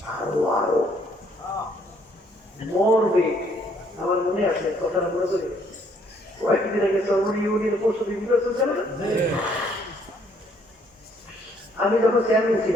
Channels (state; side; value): normal; both; correlation 0.65